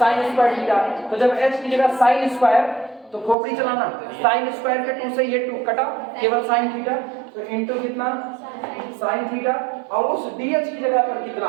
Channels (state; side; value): drops out; left; at 3.4 s